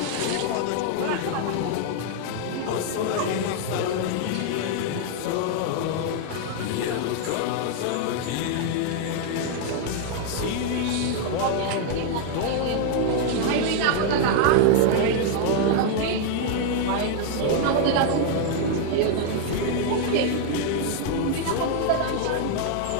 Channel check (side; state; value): both; different; correlation 0.00